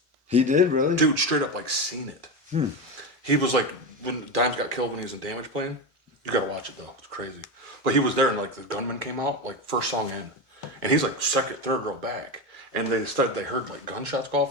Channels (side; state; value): both; normal; correlation 0.18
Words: He did really. Dude, straight up like seen it. He was like when Dimes got killed when he was in Damage Plan. You gotta watch it though. It's crazy. But he was there and like the gunman came out like first song in, and he's like second, third row back, and they heard like gunshots go off,